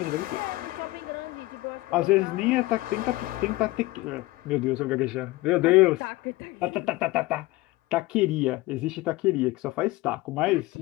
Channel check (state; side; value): quieter; right; 19.6 dB